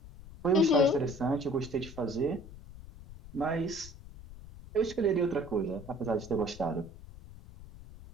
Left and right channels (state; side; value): noise; left; rumble, 17 dB below the sound